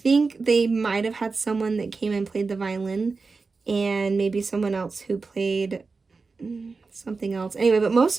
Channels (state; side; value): quieter; left; 4.3 dB